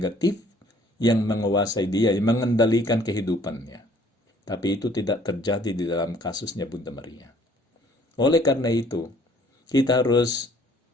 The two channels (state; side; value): normal; both; correlation 0.58